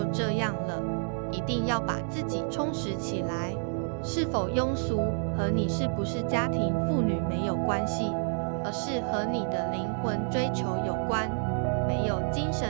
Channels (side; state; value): left; silent; 57 dB below the other